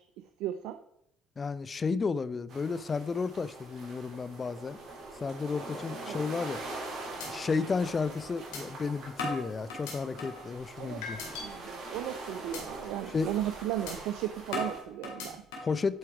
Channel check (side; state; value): both; normal; correlation 0.71